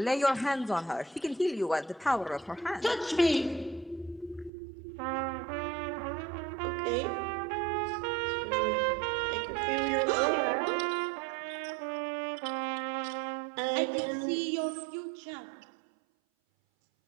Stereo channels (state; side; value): drops out; left; at 4.5 s